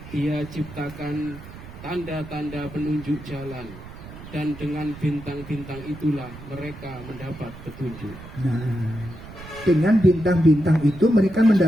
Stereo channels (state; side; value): noise; right; rumble, 15 dB below the sound